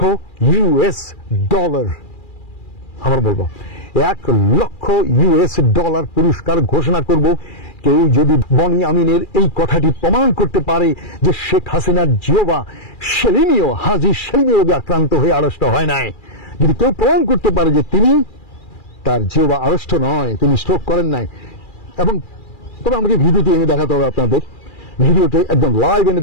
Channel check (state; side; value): late; right; 2.4 ms